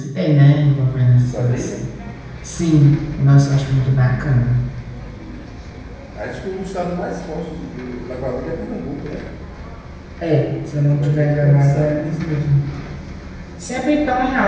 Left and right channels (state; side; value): identical; both; correlation 1.00